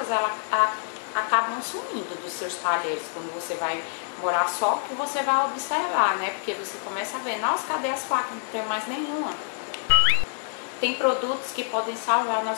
acabam sumindo dos seus talheres quando você vai morar só, que você vai observar, né? Porque você começa a ver, nossa, cadê as facas? Não tem mais nenhuma. Tem produtos que podem salvar a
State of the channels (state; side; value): silent; right; 61 dB below the other